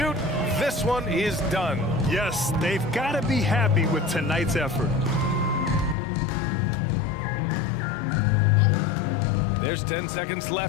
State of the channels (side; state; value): right; drops out; at 6.0 s